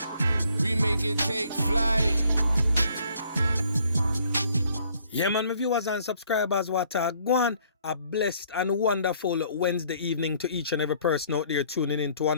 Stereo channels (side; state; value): both; inverted; correlation -0.63